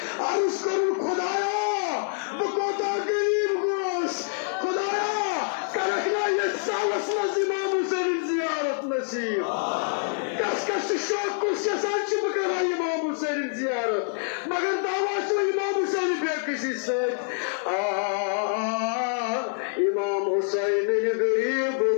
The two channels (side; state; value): right; silent; digital silence